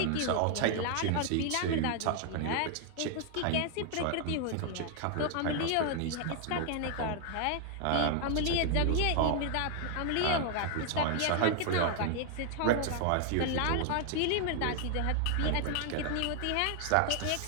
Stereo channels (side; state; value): both; different; correlation 0.00